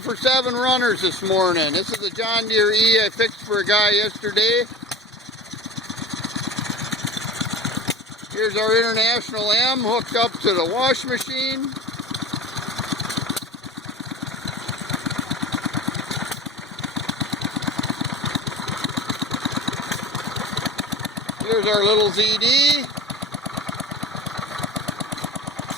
7 runners this morning. This is a John Deere E I fixed for a guy yesterday. Here's our International M hooked up to the wash machine. Here's our little ZD.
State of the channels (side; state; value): both; normal; correlation 0.35